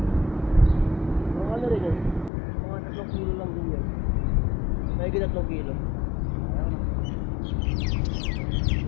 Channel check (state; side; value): drops out; right; at 2.3 s